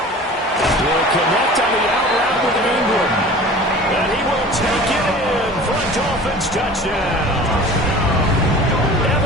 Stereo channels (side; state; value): both; normal; correlation 0.41